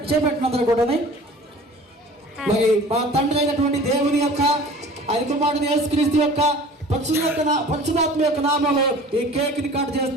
అందరూ కూడా. మరి మా తండ్రి అయినటువంటి దేవుని యొక్క ఆయన కుమారుడు యేసుక్రీస్తు యొక్క పరిశుద్ధాత్మ యొక్క నామములో ఈ కేక్ ని కట్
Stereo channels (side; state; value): both; normal; correlation 0.44